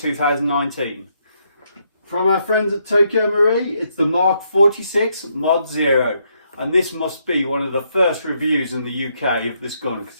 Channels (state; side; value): inverted; both; correlation -0.75